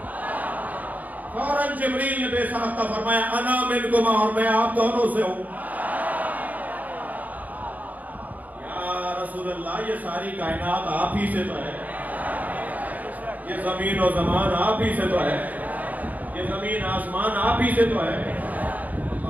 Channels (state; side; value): late; left; 0.078 ms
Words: فوراً جبریل نے بے ساختہ فرمایا انا منکما، اور میں آپ دونوں سے ہوں. یا رسول اللہ یہ ساری کائنات آپ ہی سے تو ہے، یہ زمین و زمان آپ ہی سے تو ہے، یہ زمین آسمان آپ ہی سے تو ہے.